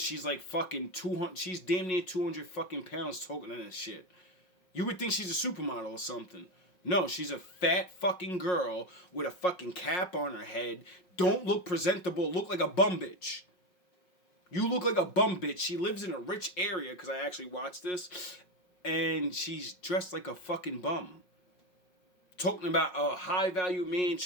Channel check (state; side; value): late; right; 5.5 ms